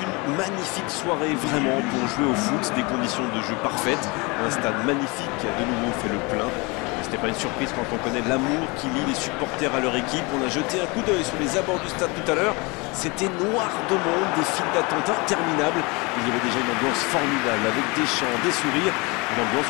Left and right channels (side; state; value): right; quieter; 27.3 dB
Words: une magnifique soirée vraiment pour jouer au foot, des conditions de jeu parfaites, un stade magnifique qui a de nouveau fait le plein. Ce n'est pas une surprise quand on connaît l'amour qui lie les supporters à leur équipe. On a jeté un coup d'œil sur les abords du stade tout à l'heure. C'était noir de monde, des files d'attente interminables. Il y avait déjà une ambiance formidable avec des chants, des sourires, une ambiance